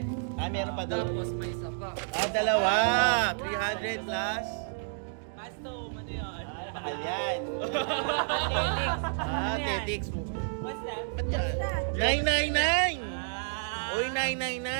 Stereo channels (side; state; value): left; silent; digital silence